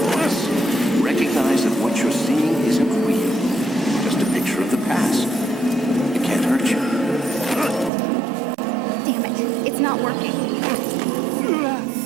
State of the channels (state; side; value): drops out; left; at 7.9 s